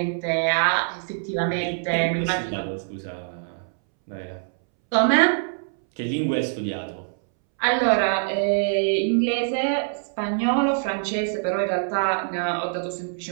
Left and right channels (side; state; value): left; silent; 62 dB below the other